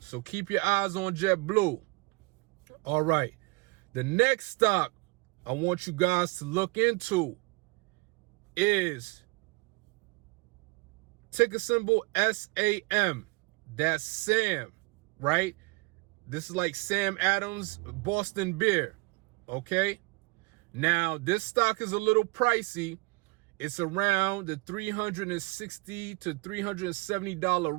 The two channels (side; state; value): left; quieter; 26.8 dB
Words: keep your eyes on JetBlue. All right. The next stock I want you guys to look into is ticker symbol SAM. That's Sam, right? This is like Sam Adams Boston beer. Okay. Now, this stock is a little pricey. It's around the $360 to